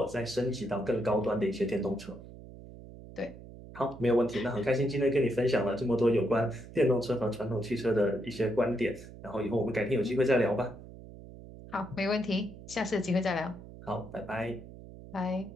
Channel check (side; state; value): right; noise; hum, 16 dB below the sound